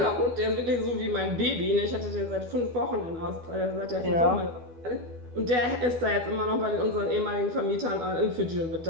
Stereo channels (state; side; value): late; left; 12 ms